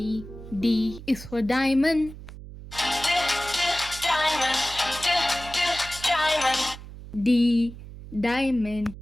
D is for diamond. D, diamond.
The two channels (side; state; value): right; noise; hum, 14 dB below the sound